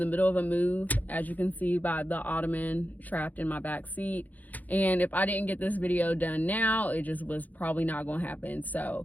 middle of a move, as you can see by the ottoman trapped in my back seat. And if I didn't get this video done now, it just was probably not going to happen.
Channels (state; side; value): late; right; 0.080 ms